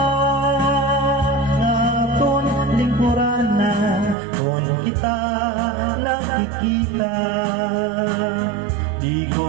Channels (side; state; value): left; drops out; at 4.2 s